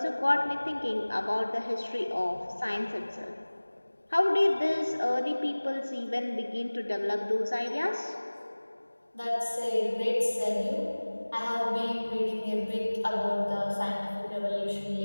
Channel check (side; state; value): both; inverted; correlation -1.00